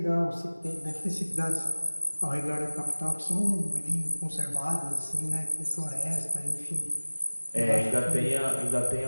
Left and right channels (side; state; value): both; inverted; correlation -1.00